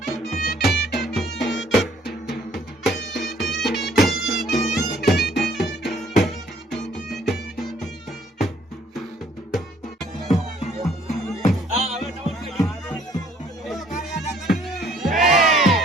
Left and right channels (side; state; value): both; normal; correlation 0.61